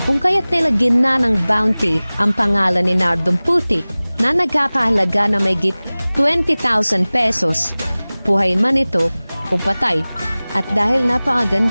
kung kaya't nilagyan na ng bounty ang pangalan ni Nardong Putik na nagkakahalaga na mayigit 20,000 pesos. Buhay man ito o patay. At dahil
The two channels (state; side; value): inverted; both; correlation -0.99